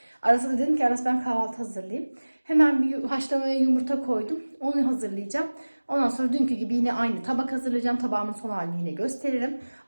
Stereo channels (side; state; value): both; inverted; correlation -1.00